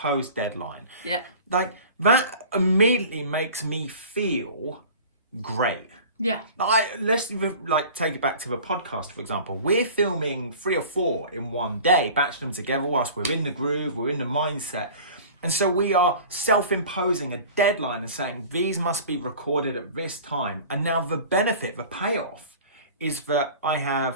deadline. Yeah. That immediately makes me feel great. Yeah. Let's take it back to the podcast, for example. We're filming 3 or 4 in one day, batching them together whilst we're in the groove, we're in the mindset. And so we are self-imposing a deadline and saying these must be recorded at this time. And now the benefit, the payoff, is that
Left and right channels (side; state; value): both; inverted; correlation -0.41